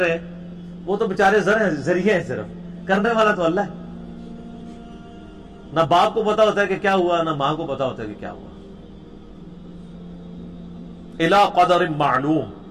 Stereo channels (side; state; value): both; identical; correlation 1.00